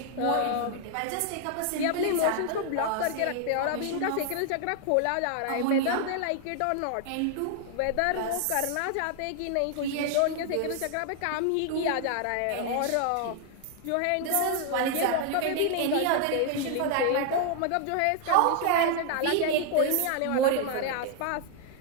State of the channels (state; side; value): different; both; correlation 0.00